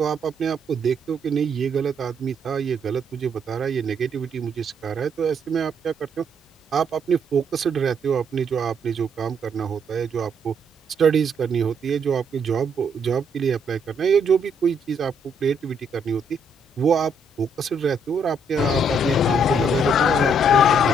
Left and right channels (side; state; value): both; normal; correlation 0.71